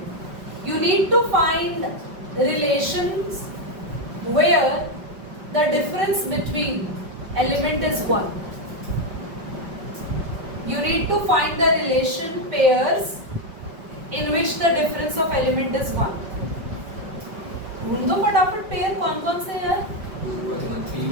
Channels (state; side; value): late; left; 5.3 ms